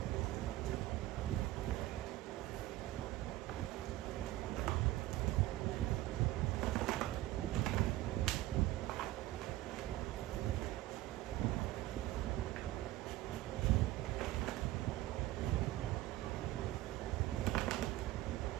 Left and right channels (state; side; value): quieter; left; 16.3 dB